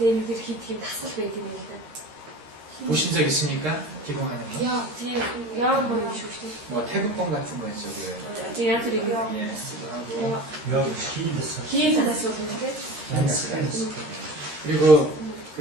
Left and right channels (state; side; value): late; left; 13 ms